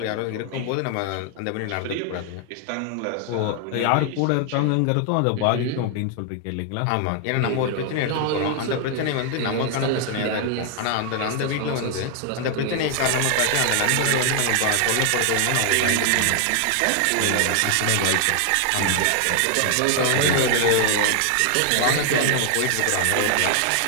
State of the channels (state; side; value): different; both; correlation 0.00